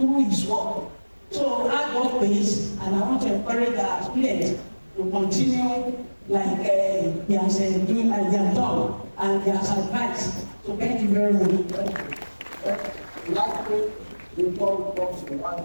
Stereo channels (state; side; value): inverted; both; correlation -1.00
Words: his work. So hard work pays, and I want to encourage our students to continue like he has doing as they have done and he has advised. So thank you very much. Lastly, before we come to one